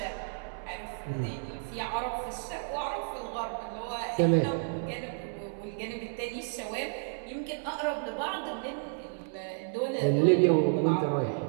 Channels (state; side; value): silent; left; 57 dB below the other